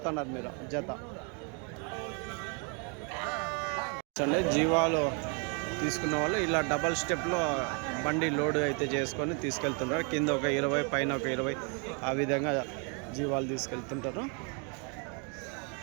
మీరు జత జీవాలు తీసుకున్న వాళ్ళు ఇలా డబల్ స్టెప్లో బండి లోడ్ అయితే చేసుకొని తీసుకెళ్తుంటారు కింద ఒక 20 పైన ఒక 20 ఆ విధంగా జీవాలు తీసుకెళ్తుంటారు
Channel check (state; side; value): quieter; left; 36.3 dB